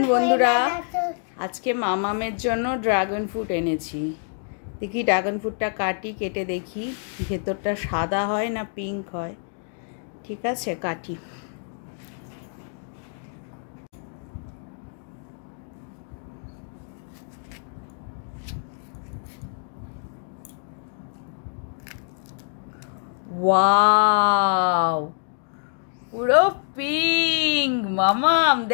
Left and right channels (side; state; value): right; silent; 61 dB below the other